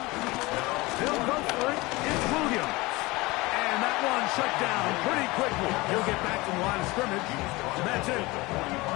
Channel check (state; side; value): quieter; right; 22.2 dB